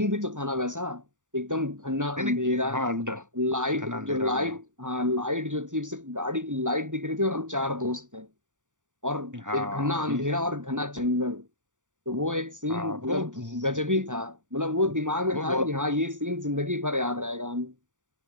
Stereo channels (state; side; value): late; left; 0.86 ms